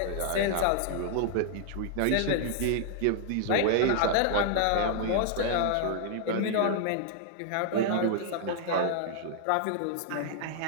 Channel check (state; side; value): different; both; correlation -0.01